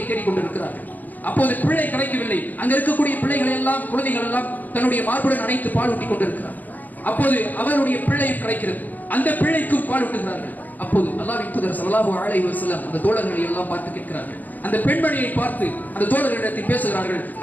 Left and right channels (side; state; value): right; late; 0.083 ms